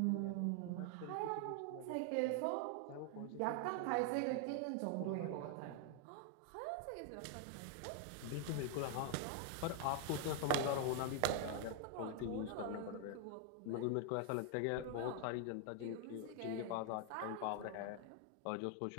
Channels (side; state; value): both; different; correlation 0.00